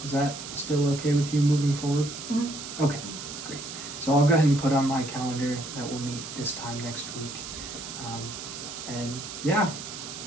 Is that still okay with you moving forward? Mm-hmm. Okay, great. So I'll go ahead and put on my calendar that we'll meet this time next week. And yeah,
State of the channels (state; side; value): noise; right; hiss, 9 dB below the sound